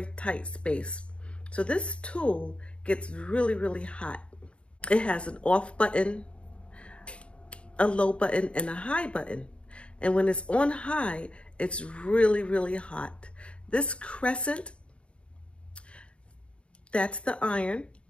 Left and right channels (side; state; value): right; late; 0.059 ms